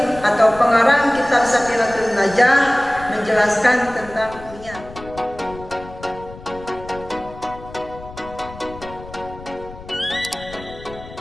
atau pengarang kitab Safinatul Najah menjelaskan tentang niat.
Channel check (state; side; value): noise; left; rumble, 16 dB below the sound